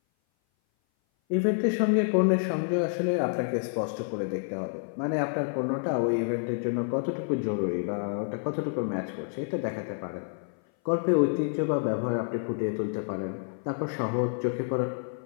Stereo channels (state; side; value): silent; right; 57 dB below the other